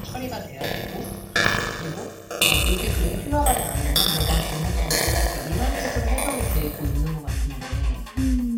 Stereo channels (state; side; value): identical; both; correlation 1.00